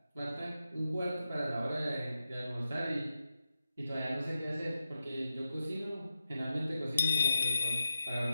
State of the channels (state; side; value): inverted; both; correlation -0.90